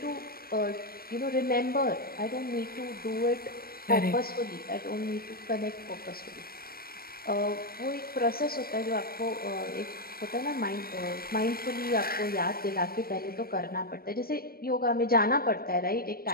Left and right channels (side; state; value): right; late; 0.44 ms